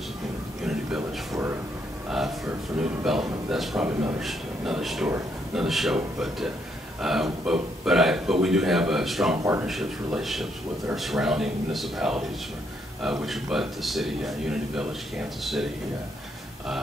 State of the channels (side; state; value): both; normal; correlation 0.74